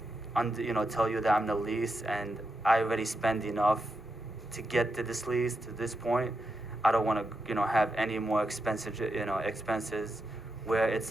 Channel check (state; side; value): normal; both; correlation 0.85